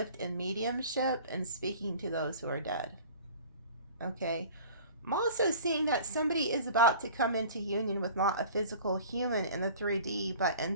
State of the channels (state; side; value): inverted; both; correlation -0.43